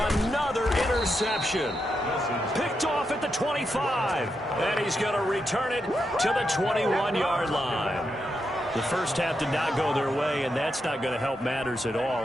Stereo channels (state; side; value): normal; both; correlation 0.84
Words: interception. Picked off at the 25. And he's going to return it to the 21-yard line. The first half did not go their way, and that's not going to help matters at